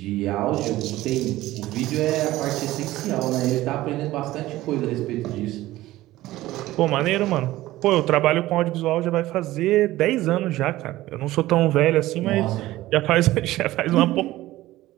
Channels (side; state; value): left; quieter; 16.4 dB